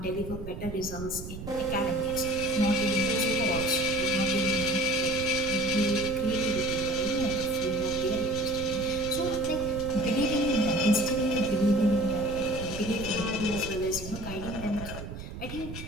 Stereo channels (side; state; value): right; noise; rumble, 9 dB below the sound